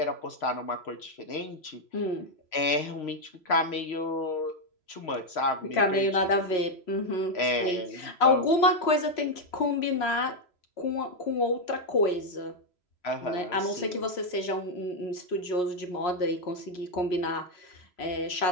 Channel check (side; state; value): right; late; 3.0 ms